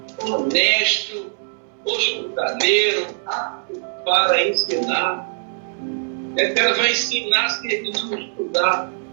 honesto, hospitaleiro, apto para ensinar. Que ela vai ensinar se ele não estudar,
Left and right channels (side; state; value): left; silent; 63 dB below the other